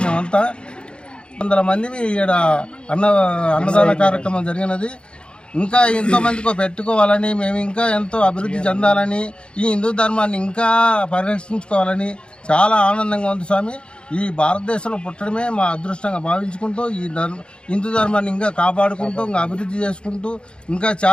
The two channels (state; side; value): late; right; 0.054 ms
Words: మేమంతా. 100 మందిని ఇక్కడ అన్నదాన కార్యక్రమం జరిగినది. ఇంకా ఎంతోమందికి పెట్టుకోవాలని, మేము ఇంకా ఎంతో అభివృద్ధి చెందాలని, ఈ హిందూ ధర్మాన్ని ఇంకా పరిరక్షించుకోవాలని చాలా ఆనందంగా ఉంది స్వామి. ఈ భారతదేశంలో పుట్టడమే మా అదృష్టంగా భావించుకుంటూ ఈ హిందూ ధర్మాన్ని ఇంకా కాపాడుకుంటూ, ఇంకా అభివృద్ధి చేసుకుంటూ ఇంకా